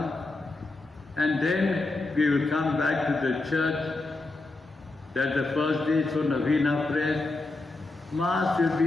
And then we will come back to the church. That's the first day, so Navina prayer. Mass will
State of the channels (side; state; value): right; quieter; 3.2 dB